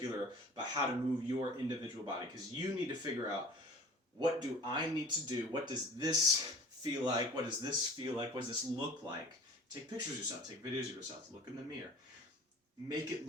about how to move your individual body, because you need to figure out, what do I need to do? What does this feel like? What does this feel like? What does this look like? Take pictures of yourself. Take videos of yourself. Look in the mirror. Make it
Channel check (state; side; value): normal; both; correlation 0.44